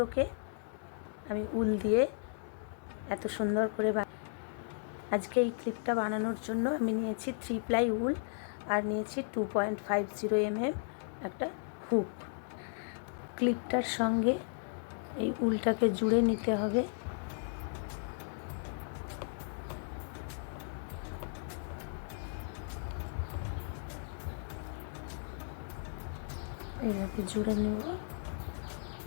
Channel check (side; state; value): right; silent; digital silence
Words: আমি উল দিয়ে এত সুন্দর করে আজকে এই ক্লিপটা বানানোর জন্য আমি নিয়েছি 3 প্লাই উল আর নিয়েছি 2.50 mm একটা হুক। ক্লিপটার সঙ্গে এই উলটাকে জুড়ে নিতে হবে। এইভাবে জুড়ে নেব।